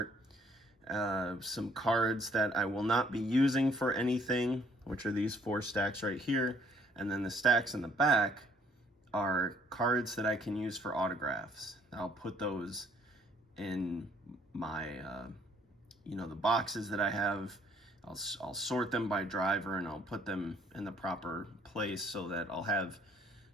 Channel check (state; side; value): normal; both; correlation 0.63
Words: Some cards that I will not be using for anything, which are these 4 stacks right here. And then the stacks in the back are cards that I can use for autographs. I'll put those in my, the boxes that I have. I'll sort them by driver and I'll put them in the proper place so that I'll have,